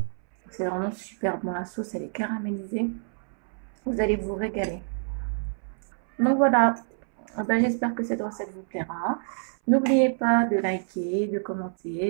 C'est vraiment super bon, la sauce elle est caramélisée. Vous allez vous régaler. Donc voilà, ben, j'espère que cette recette vous plaira. N'oubliez pas de liker, de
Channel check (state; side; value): silent; left; 60 dB below the other